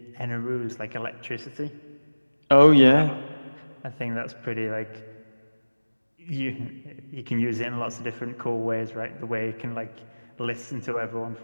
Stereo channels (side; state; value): both; inverted; correlation -1.00